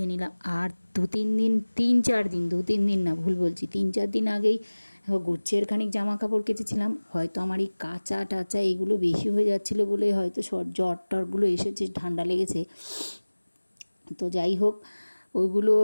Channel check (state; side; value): inverted; both; correlation -1.00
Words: নিলাম। আর দু তিন দিন না, ভুল বলছি, 3-4 দিন আগেই গুচ্ছের খানিক জামা কাপড় কেচেছিলাম। হয়তো আমার এই কাঁচা টাচা এগুলো বেশি হয়ে যাচ্ছিলো বলে হয়তো জ্বর টরগুলো এসেছে, ঠান্ডা লেগেছে। তো যাই হোক, ওইগুলো